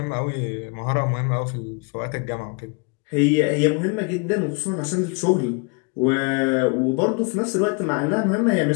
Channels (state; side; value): quieter; right; 33.6 dB